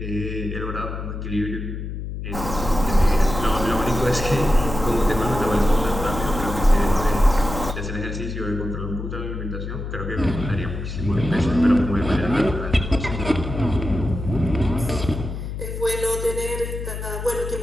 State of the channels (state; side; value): noise; left; hum, 6 dB below the sound